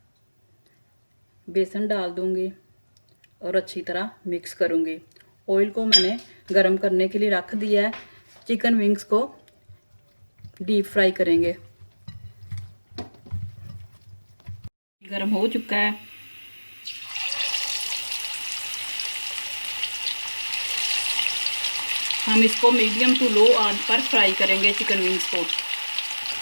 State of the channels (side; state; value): both; inverted; correlation -1.00